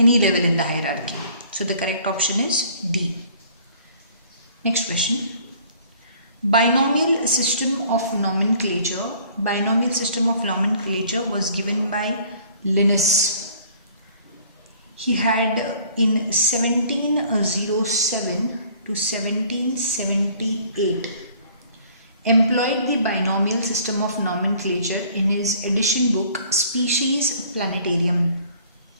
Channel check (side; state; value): both; inverted; correlation -0.55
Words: level in the hierarchy. So the correct option is D. Next question. Binomial system of nomenclature. Binomial system of nomenclature was given by Linnaeus. He had in 1707 to 1778 employed the binomial system of nomenclature in his edition book Species Planetarium.